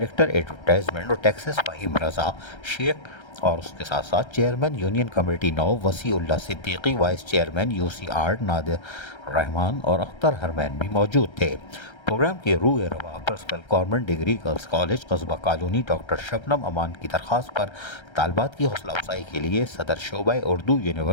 advertisement और टैक्सेस फ़हीम रज़ा शेख और उसके साथ साथ chairman union committee 9 Wasiullah Siddiqui, vice chairman यूसी8 नादिर रहमान और अख्तर हरमैन भी मौजूद थे। प्रोग्राम के रूह रवा principal government degree girls college कस्बा कॉलोनी डॉक्टर शबनम अमान की दरख्वास्त पर तालबात की हौसला अफजाई के लिए सदर शोबा Urdu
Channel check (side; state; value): right; late; 1.3 ms